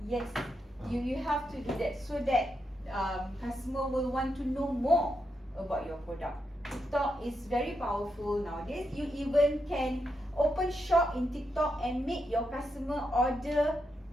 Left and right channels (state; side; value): normal; both; correlation 0.83